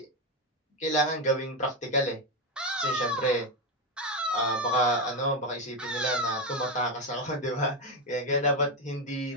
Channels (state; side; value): normal; both; correlation 0.09